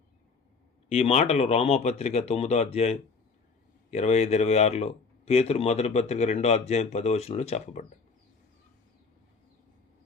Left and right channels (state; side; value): quieter; right; 4.7 dB